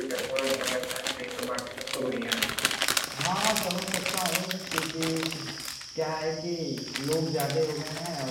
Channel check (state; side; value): identical; both; correlation 1.00